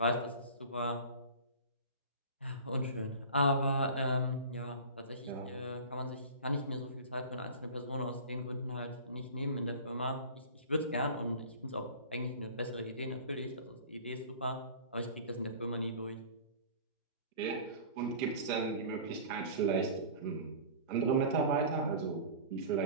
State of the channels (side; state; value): both; inverted; correlation -0.38